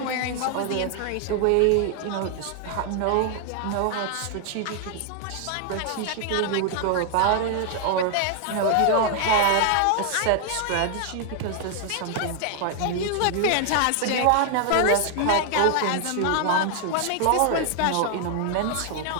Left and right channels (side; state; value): both; different; correlation 0.00